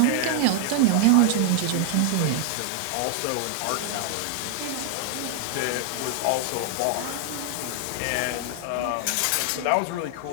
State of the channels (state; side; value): different; both; correlation 0.00